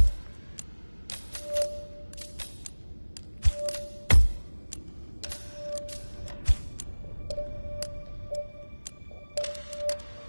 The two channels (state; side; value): inverted; both; correlation -1.00